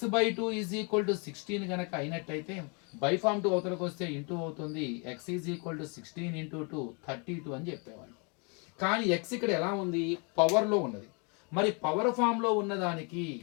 ఈజ్ ఈక్వల్ టు 16 కనుక అయినట్టయితే బై ఫామ్ 2 అవతలకు వస్తే ఇంటూ అవుతుంది. x ఈజ్ ఈక్వల్ టు 16 × 2 32 అని చెప్పేవాడిని. కానీ x ఇక్కడ ఎలా ఉంది? పవర్లో ఉన్నది. మరి పవర్ ఫామ్లో ఉన్నదానికి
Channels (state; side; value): quieter; right; 34.5 dB